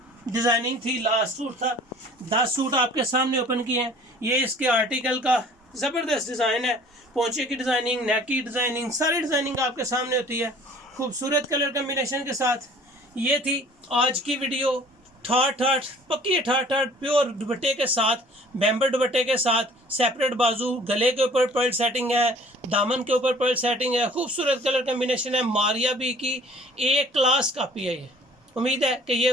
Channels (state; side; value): normal; both; correlation 0.51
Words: डिज़ाइनिंग थी, लास्ट सूट था। 10 सूट आपके सामने ओपन किए हैं। ये इसके आर्टिकल का ज़बरदस्त डिज़ाइन है, पोंचे की डिज़ाइनिंग, नेक की डिज़ाइनिंग, सारी डिज़ाइनिंग आपके सामने होती है खूबसूरत कलर कम्बिनेशन के साथ। ये थी आज की वीडियो, ठाठ पक्की ठाठ प्योर दुपट्टे के साथ, बैम्बर दुपट्टे के साथ, सेपरेट बाजू, गले के ऊपर पर्ल सेटिंग है, दामन के ऊपर पर्ल सेटिंग है, खूबसूरत कलर कम्बिनेशन है। मारिया बी की एक क्लास कापी है ये। उम्मीद है कि ये